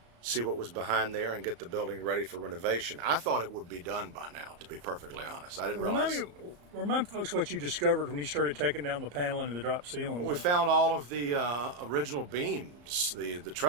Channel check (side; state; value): left; late; 34 ms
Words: see what was behind there and get the building ready for renovation. I thought it would be done by now, to be perfectly honest. I didn't realize. Remind folks what you discovered when you started taking down the paneling and the drop ceiling. We found all of the original beams, the